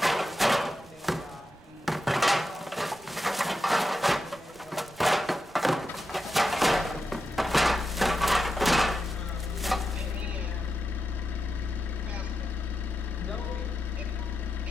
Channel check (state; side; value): noise; right; rumble, 26 dB below the sound